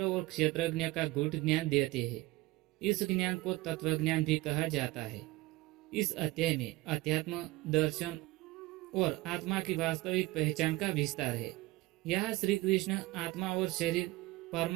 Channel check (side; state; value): left; quieter; 19.8 dB